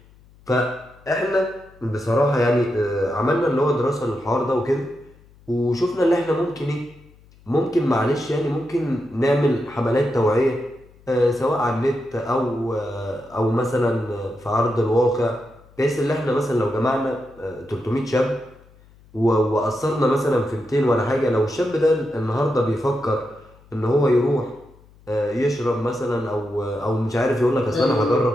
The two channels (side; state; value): left; noise; hum, 27 dB below the sound